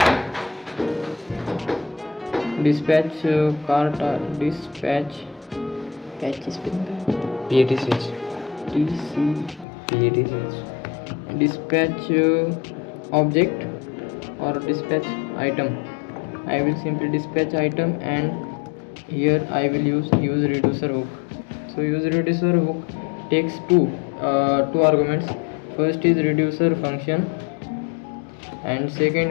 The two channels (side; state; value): right; drops out; at 9.7 s